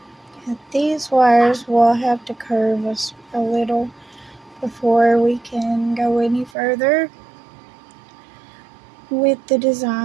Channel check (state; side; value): drops out; left; at 6.5 s